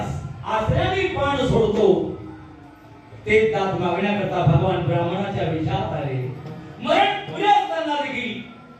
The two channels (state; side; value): identical; both; correlation 1.00